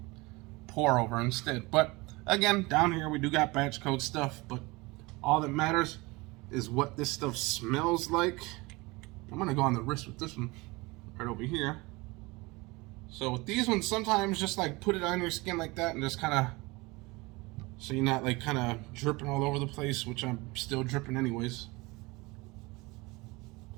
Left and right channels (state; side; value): quieter; left; 23.7 dB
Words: pour over instead. But again, down here we do got batch code stuff, but all that matters is what this stuff smells like. I'm gonna go on the wrist with this one right over here. So with these ones, sometimes just like put it on your skin like that and just kind of, so you're not like kind of dripping all over the place, which I'm still dripping anyways.